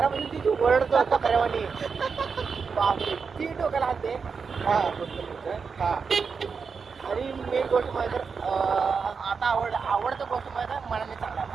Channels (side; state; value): left; quieter; 5.5 dB